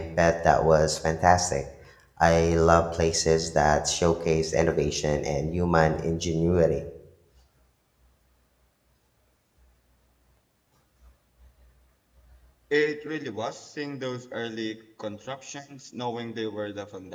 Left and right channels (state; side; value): identical; both; correlation 1.00